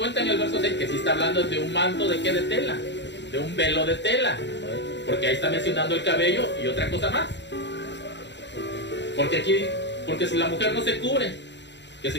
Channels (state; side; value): late; right; 0.52 ms